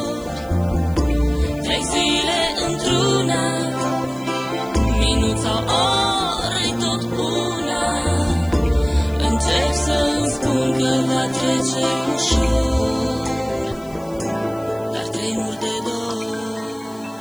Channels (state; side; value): noise; left; hiss, 25 dB below the sound